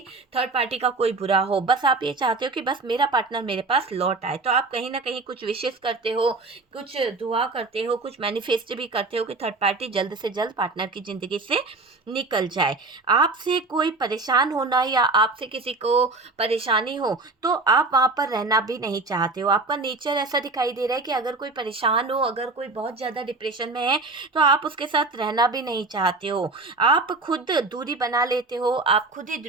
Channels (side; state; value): left; quieter; 3.6 dB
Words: थर्ड पार्टी का कोई बुरा हो, बस आप ये चाहते हो कि बस मेरा पार्टनर मेरे पास लौट आए। तो आप कहीं ना कहीं कुछ विशेष करते हो, कुछ दुआ करते हो, कुछ मैनिफेस्ट भी करते हो कि थर्ड पार्टी जल्द से जल्द पार्टनर की ज़िंदगी से निकल जाए। आपसे कोई परेशान होना या आपसे किसी को परेशानी हो तो आप वहाँ पर रहना भी नहीं चाहते हो। आपका नेचर ऐसा दिखाई दे रहा है कि अगर कोई परेशान हो, अगर कोई बहुत ज़्यादा डिप्रेशन में है तो आप उसके साथ रहना भी नहीं चाहते हो। आप खुद दूरी बना लेते हो, आप खुद ही